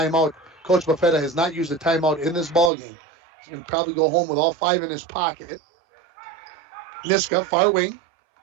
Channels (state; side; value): drops out; left; at 2.7 s